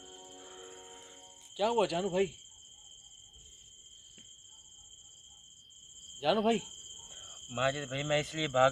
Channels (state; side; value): identical; both; correlation 1.00